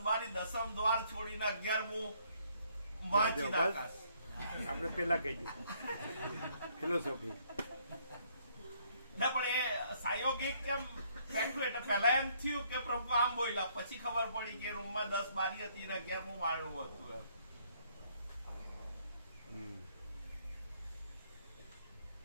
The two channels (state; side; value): inverted; both; correlation -0.67